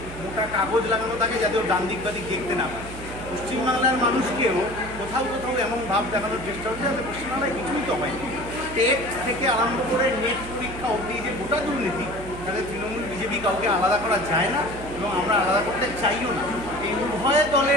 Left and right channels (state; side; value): noise; right; hum, 12 dB below the sound